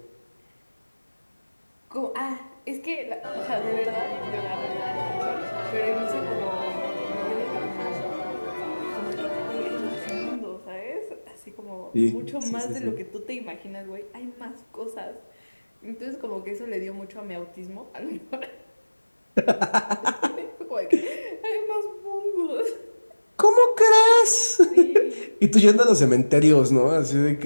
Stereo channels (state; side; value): inverted; both; correlation -1.00